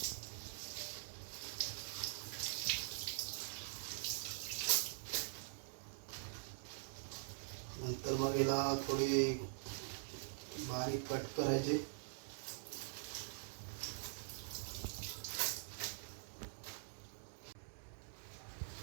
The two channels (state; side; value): silent; left; digital silence